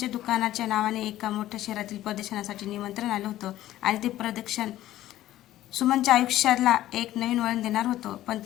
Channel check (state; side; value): quieter; right; 14.1 dB